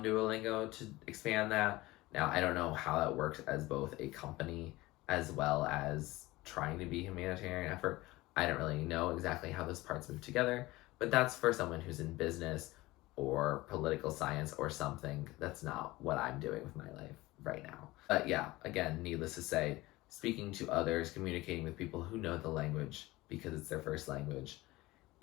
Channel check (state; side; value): quieter; right; 19.5 dB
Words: Duolingo to expand that. Now, I don't know how that works as both a company as well as trying to be a humanitarian effort. I don't really know exactly how those parts move together, but that's for someone who's in business or political science or something. That's not what I'm doing with my life right now. But yeah, again, needless to say, speaking to others, communicating with people who know the language because it's their first language